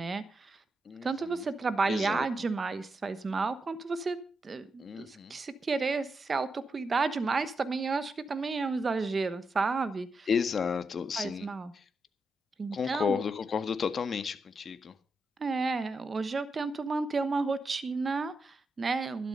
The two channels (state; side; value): normal; both; correlation 0.85